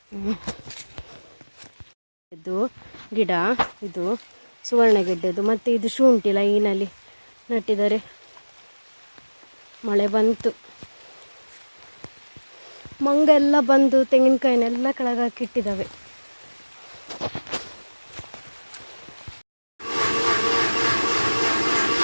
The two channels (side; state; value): both; inverted; correlation -1.00